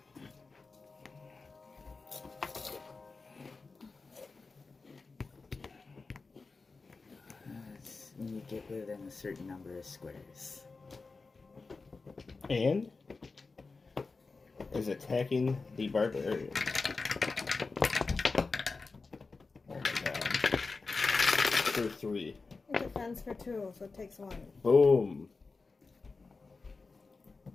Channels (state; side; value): quieter; right; 4.1 dB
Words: When you get within a certain number of squares. And is attacking the barbarian. Oh my god. For 3. It defends for 2, so it takes 1. Boom.